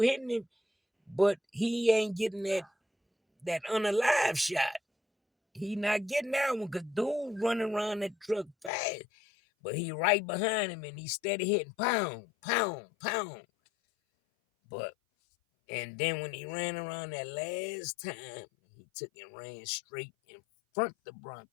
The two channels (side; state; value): right; drops out; at 8.7 s